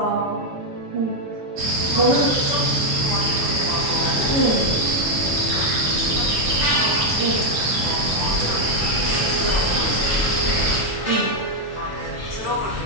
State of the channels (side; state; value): both; normal; correlation 0.01